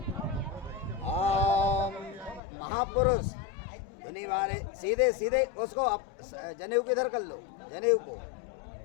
महापुरुष धुनी बारे सीधे सीधे उसको जनेऊ को इधर कर लो, जनेऊ को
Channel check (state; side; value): drops out; right; at 2.4 s